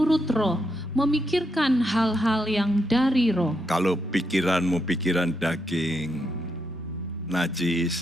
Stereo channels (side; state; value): both; normal; correlation 0.81